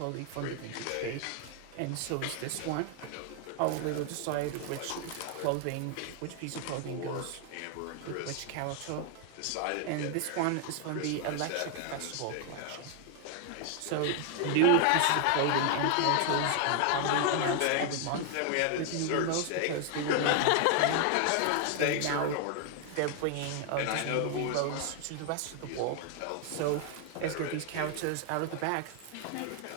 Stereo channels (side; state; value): both; different; correlation 0.00